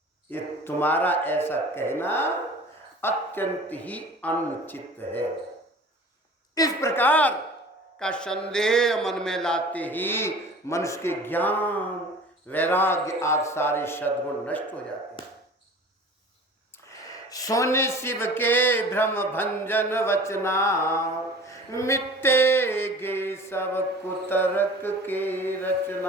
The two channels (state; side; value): normal; both; correlation 0.43